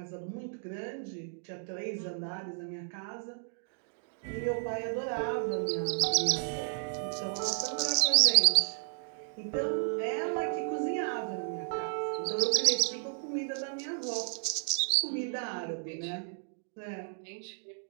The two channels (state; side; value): silent; left; digital silence